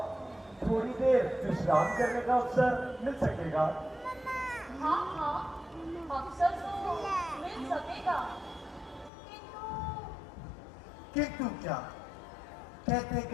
थोड़ी देर विश्राम करने का अवसर मिल सकेगा? हाँ, अवसर तो मिल सकेगा, किंतु क्या? कहते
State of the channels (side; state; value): right; drops out; at 9.1 s